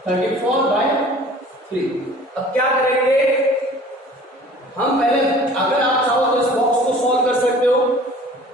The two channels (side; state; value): both; normal; correlation 0.47